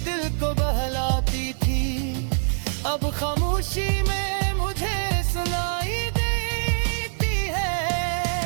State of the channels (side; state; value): left; silent; digital silence